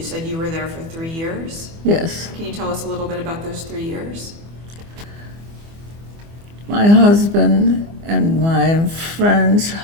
said you were there for 3 years. Yes. Can you tell us a little bit about those 3 years? My husband and my friend's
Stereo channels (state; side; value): late; left; 24 ms